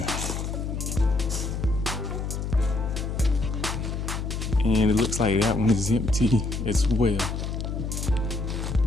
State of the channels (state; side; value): noise; left; hum, 3 dB below the sound